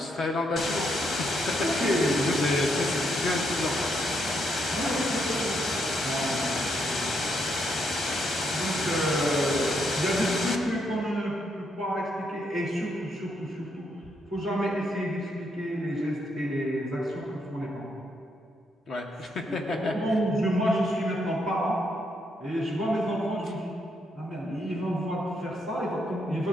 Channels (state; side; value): normal; both; correlation 0.77